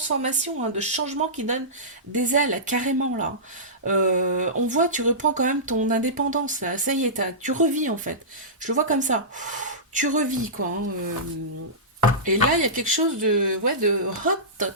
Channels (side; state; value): both; normal; correlation -0.18